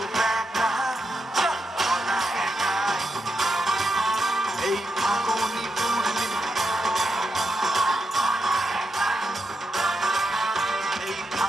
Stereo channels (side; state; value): both; normal; correlation 0.84